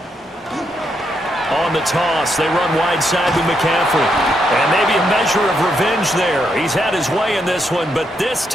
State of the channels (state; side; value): normal; both; correlation 0.79